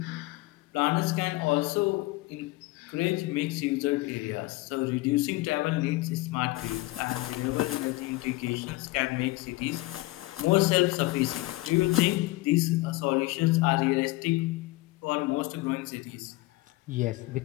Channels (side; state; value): right; quieter; 20.6 dB